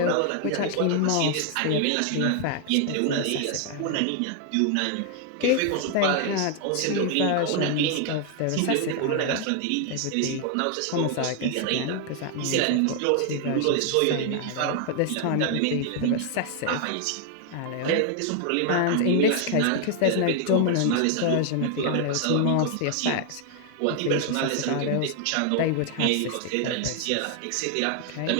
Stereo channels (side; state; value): both; different; correlation 0.00